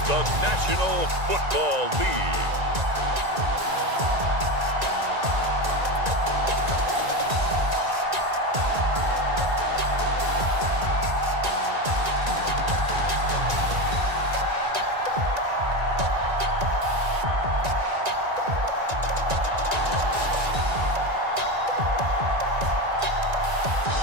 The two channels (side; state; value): left; late; 1.9 ms